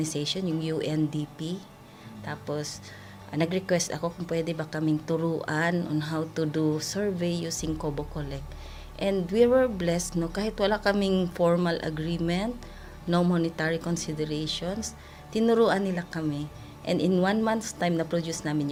yung UNDP. Tapos, nag-request ako kung pwede ba kaming turuan on how to do survey using Kobo Collect. And we were blessed, kahit wala kaming formal agreement, no monetary considerations, tinuruan nila kami. And in 1 month's time, na-produce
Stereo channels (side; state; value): both; identical; correlation 1.00